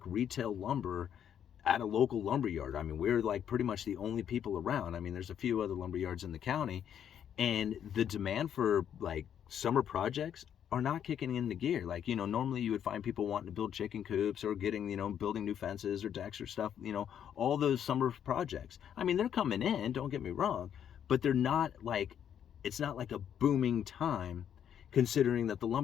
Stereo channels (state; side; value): quieter; right; 9.2 dB